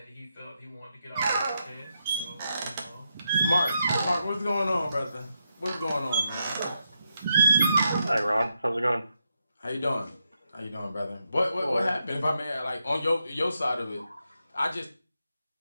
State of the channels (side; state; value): both; inverted; correlation -0.84